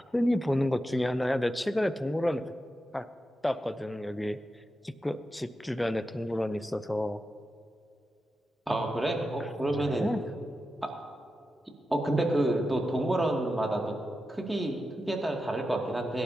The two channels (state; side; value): normal; both; correlation 0.90